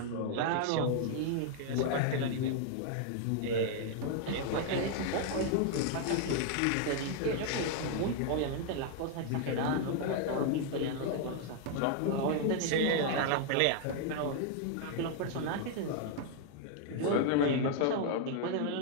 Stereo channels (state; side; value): different; both; correlation 0.00